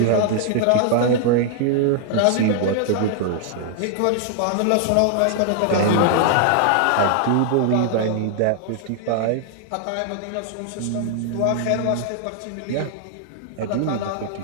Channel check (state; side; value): different; both; correlation 0.00